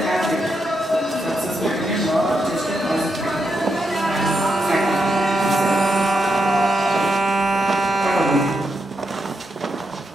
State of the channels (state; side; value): normal; both; correlation 0.83